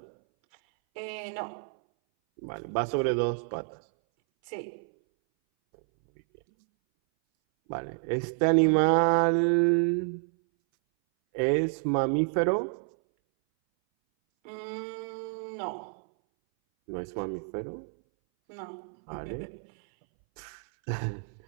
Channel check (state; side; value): silent; left; 58 dB below the other